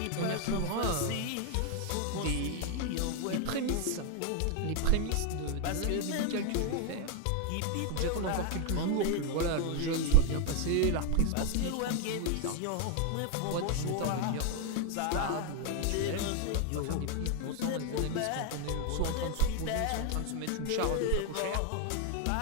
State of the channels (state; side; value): different; both; correlation 0.01